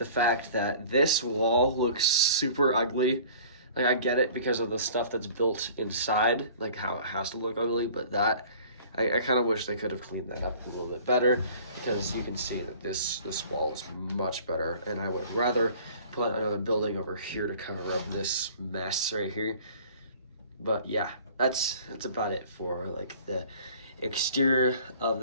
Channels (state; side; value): inverted; both; correlation -0.48